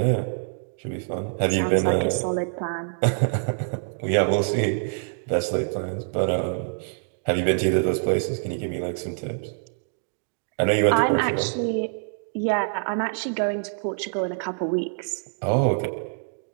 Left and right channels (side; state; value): left; silent; digital silence